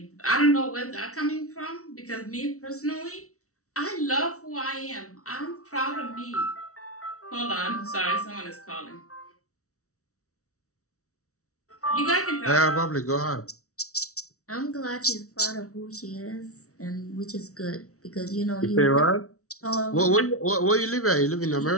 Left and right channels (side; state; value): right; late; 0.64 ms